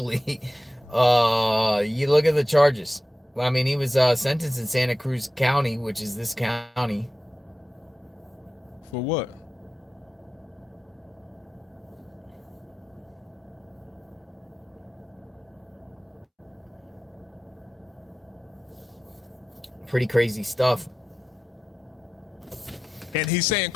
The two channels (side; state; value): both; normal; correlation 0.93